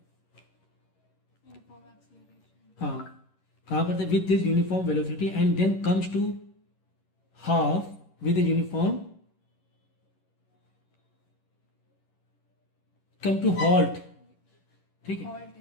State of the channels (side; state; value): right; late; 11 ms